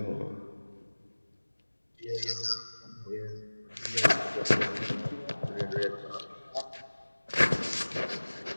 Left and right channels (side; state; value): both; inverted; correlation -1.00